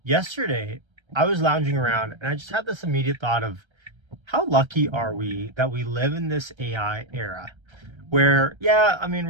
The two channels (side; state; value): left; late; 1.3 ms